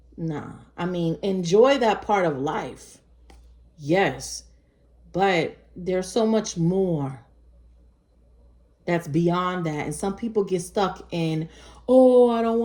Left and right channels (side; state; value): both; identical; correlation 1.00